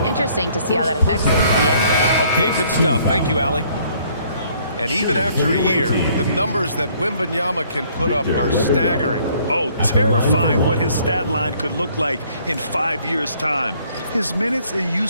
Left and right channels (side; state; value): both; inverted; correlation -0.62